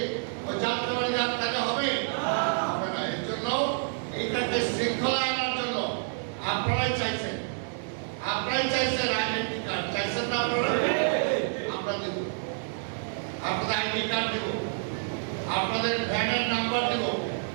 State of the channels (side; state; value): left; silent; digital silence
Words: ওই যাত্রাবাড়ি যান তাহলে হবে? হবে না। এর জন্য এইটাকে শৃঙ্খলা আনার জন্য আপনারাই চাইছেন আইডেন্টি কার্ড চাইছেন না আপনারা? আমরা দেব, আপনাদের আইডি কার্ড দেব, আপনাদের ভ্যানের নাম্বার দেব,